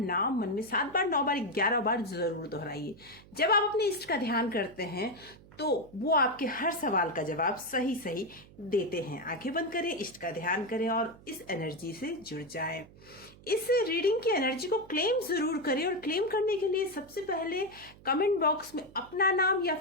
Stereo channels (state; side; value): noise; right; hum, 22 dB below the sound